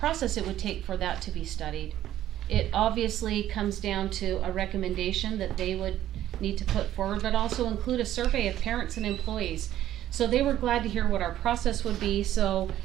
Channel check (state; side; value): quieter; left; 12.6 dB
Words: it would take for that to be studied. It obviously comes down to a recommendation that they would need to put forward, but also include a survey of parents and employees. So they were glad to hear what our process would be. So